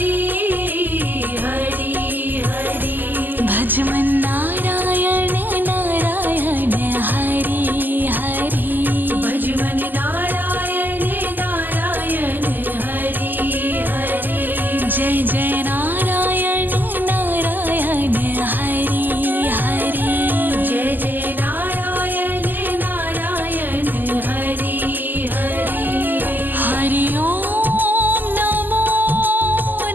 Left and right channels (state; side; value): late; left; 0.088 ms